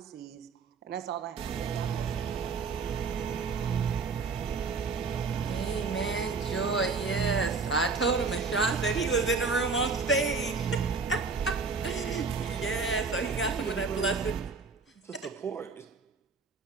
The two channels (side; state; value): left; quieter; 4.6 dB